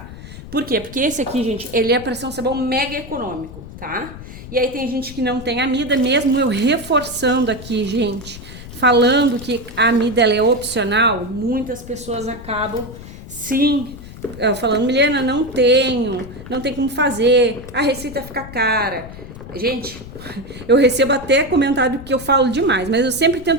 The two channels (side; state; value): left; noise; rumble, 14 dB below the sound